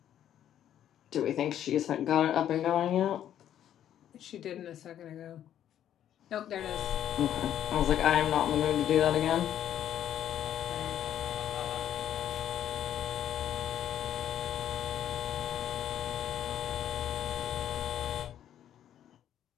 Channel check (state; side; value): quieter; right; 10.7 dB